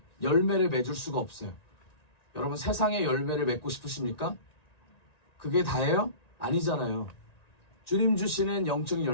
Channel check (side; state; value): right; late; 1.9 ms